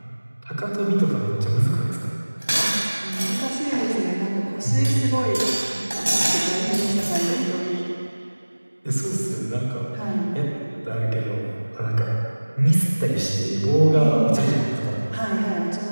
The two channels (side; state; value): both; inverted; correlation -1.00